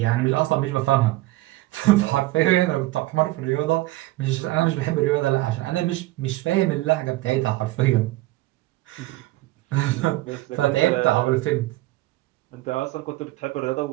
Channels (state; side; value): quieter; left; 18.2 dB